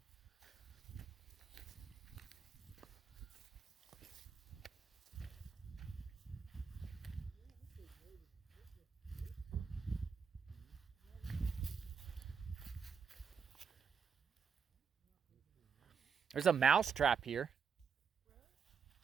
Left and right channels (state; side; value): quieter; left; 6.3 dB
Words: There's a mouse trap here.